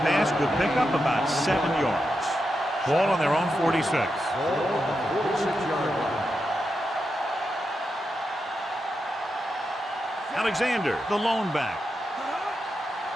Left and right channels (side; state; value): both; normal; correlation 0.87